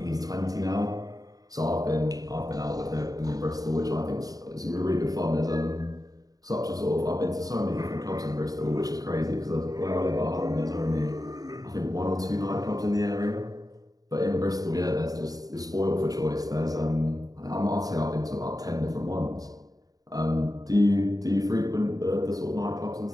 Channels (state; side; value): late; left; 0.18 ms